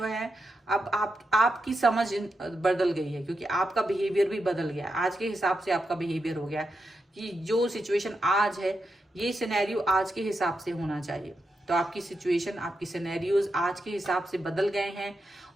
है अब आपकी समझ बदल गई है, क्योंकि आपका बिहेवियर भी बदल गया है। आज के हिसाब से आपका बिहेवियर हो गया है कि जो सिचुएशन आज है, ये सिनेरियो आज के हिसाब से होना चाहिए। तो आपकी सिचुएशन, आपकी सिनेरियोज आज के हिसाब से बदल गए हैं।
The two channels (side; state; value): both; normal; correlation 0.86